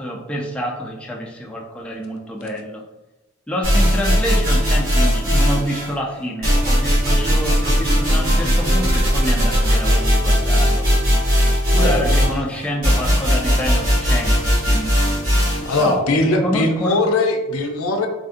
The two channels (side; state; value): both; normal; correlation 0.74